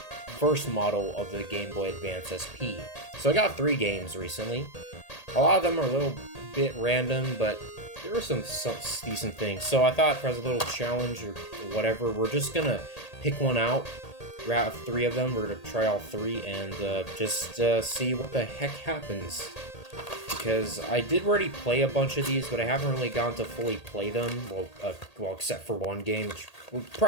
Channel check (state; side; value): late; right; 1.8 ms